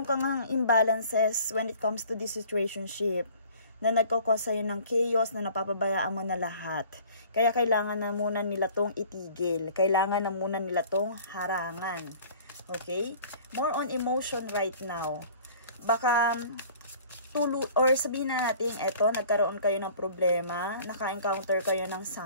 kang imbalances when it comes to this situationship na nagkakos sa'yo ng chaos na napapabayaan mo na lahat. Kaya kailangan na muna nila tong itigil. Kailangan na muna nila tong harangan. Okay? More on emotion right now. Baka or sabihin na natin, eto, nagkaroon kayo ng problema, naka-encounter kayo ng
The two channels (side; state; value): both; inverted; correlation -0.49